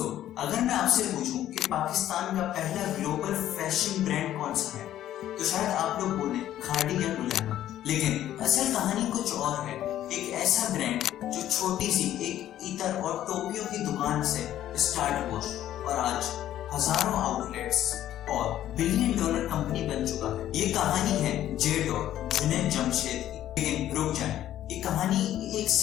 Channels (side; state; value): right; quieter; 12.3 dB